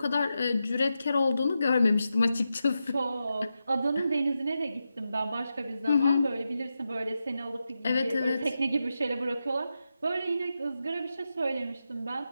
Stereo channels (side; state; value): both; inverted; correlation -0.89